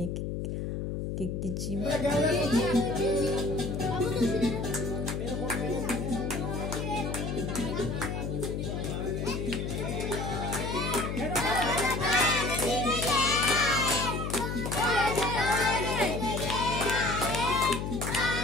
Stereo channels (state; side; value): noise; left; hum, 3 dB below the sound